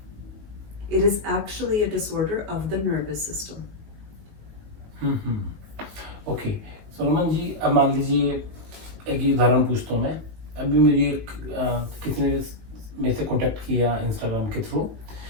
It is actually a disorder of the nervous system. Okay, so Raman ji, अब मान लीजिए एक ही उदाहरण पूछता हूँ मैं। अभी मुझे किसी ने मेरे से कांटेक्ट किया इंस्टाग्राम के थ्रू,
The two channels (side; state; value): left; late; 19 ms